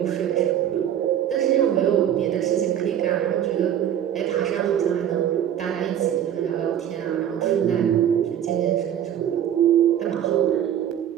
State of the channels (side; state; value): left; quieter; 10.1 dB